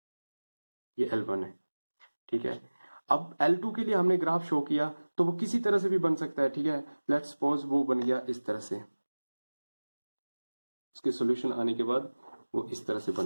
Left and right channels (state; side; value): inverted; both; correlation -1.00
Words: ये L1 है, ठीक है। अब L2 के लिए हमने ग्राफ शो किया तो वो किसी तरह से भी बन सकता है, ठीक है। लेट्स सपोज वो बन गया इस तरह से, उसके सॉल्यूशन आने के बाद वो इस तरह से